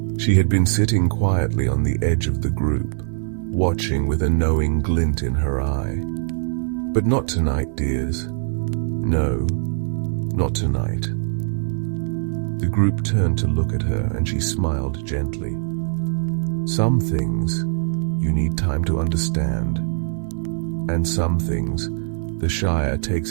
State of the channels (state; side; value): silent; left; 64 dB below the other